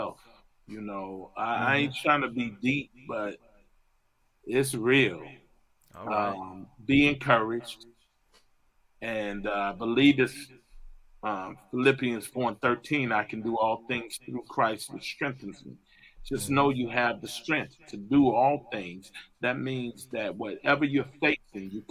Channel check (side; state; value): both; identical; correlation 1.00